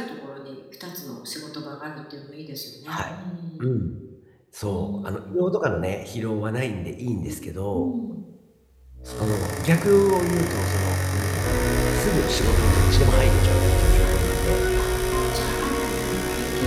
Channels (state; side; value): identical; both; correlation 1.00